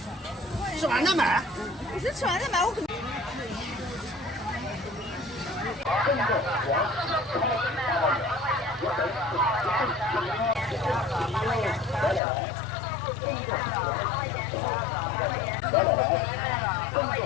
吃完再买。不是吃完再买，我可能。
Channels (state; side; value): drops out; right; at 12.2 s